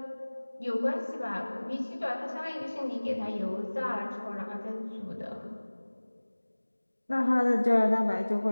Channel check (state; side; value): inverted; both; correlation -1.00